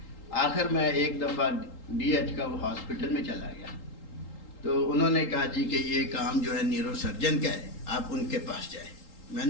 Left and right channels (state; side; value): late; right; 3.8 ms